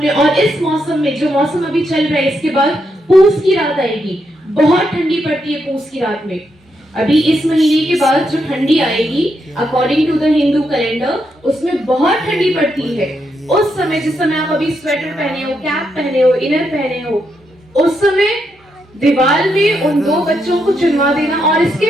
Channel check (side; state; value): both; normal; correlation 0.81